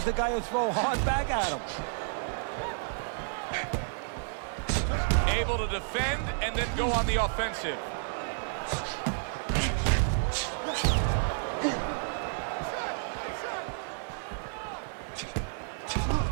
the guy will throw hard back at him. Able to defend and then go on the offensive.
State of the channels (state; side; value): silent; left; 57 dB below the other